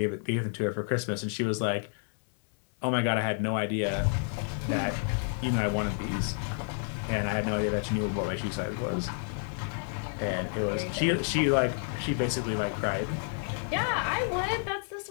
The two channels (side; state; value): right; silent; 58 dB below the other